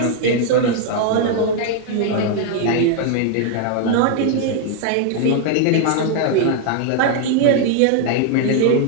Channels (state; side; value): different; both; correlation 0.00